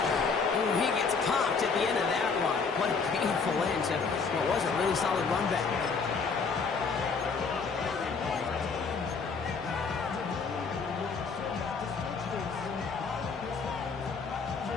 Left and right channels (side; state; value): right; quieter; 5.0 dB